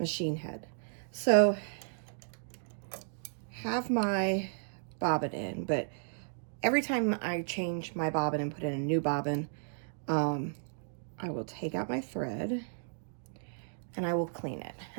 head. So, have my bobbin in, but every time I change my bobbin and put in a new bobbin, I will take out my thread and I will clean it.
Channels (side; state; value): left; silent; digital silence